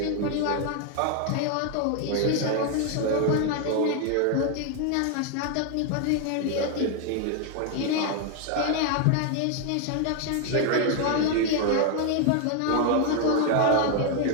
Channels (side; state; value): both; different; correlation 0.00